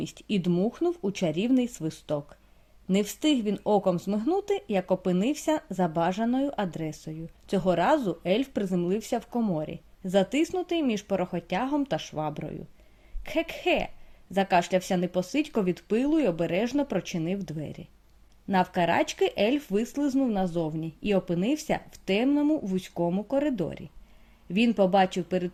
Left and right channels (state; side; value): identical; both; correlation 1.00